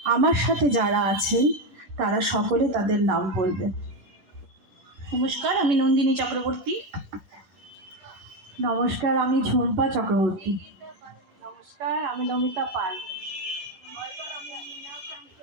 আমার সাথে যারা আছেন তারা সকলে তাদের নাম বলবেন। নমস্কার, আমি নন্দিনী চক্রবর্তী। নমস্কার, আমি ঝুম্পা চক্রবর্তী। নমস্কার, আমি নমিতা পাল।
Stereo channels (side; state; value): left; late; 11 ms